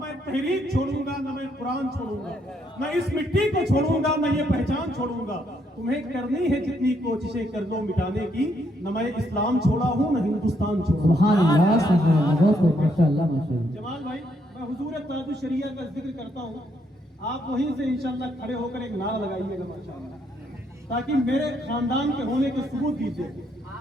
تحریک چھوڑوں گا، نہ میں قرآن چھوڑوں گا، نہ اس مٹی کو چھوڑوں گا، نہ یہ پہچان چھوڑوں گا. تمہیں کرنی ہے جتنی کوششیں کر لو مٹانے کی. نہ میں اسلام چھوڑا ہوں، نہ ہندوستان چھوڑا. سبحان اللہ سبحان اللہ. بہت ماشاءاللہ ماشاءاللہ. جمال بھائی، میں حضور تاج الشریعہ کا ذکر کرتا ہوں، آپ وہیں سے انشاءاللہ کھڑے ہو کر ایک نعرہ لگائیے گا ماشاءاللہ، تاکہ میرے خاندان کے ہونے کے ثبوت دیجیے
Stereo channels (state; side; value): normal; both; correlation 0.74